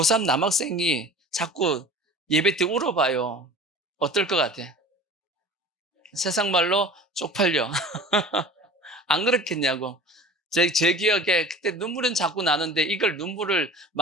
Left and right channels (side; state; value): both; normal; correlation 0.40